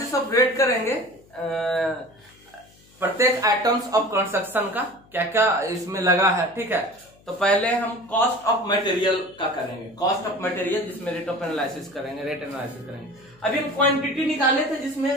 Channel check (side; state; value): left; noise; hum, 29 dB below the sound